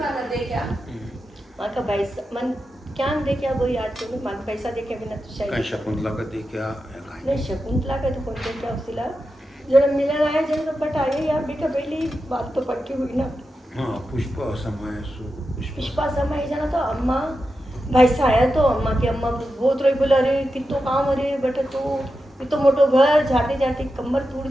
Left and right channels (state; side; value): normal; both; correlation 0.90